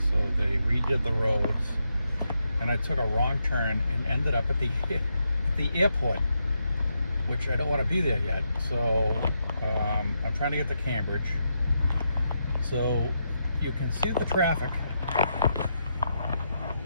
So they redid the roads. And I took a wrong turn and ended up at the airport, which I don't want to be there yet. So I'm trying to get to Cambridge. So you can see the traffic.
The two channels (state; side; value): inverted; both; correlation -0.83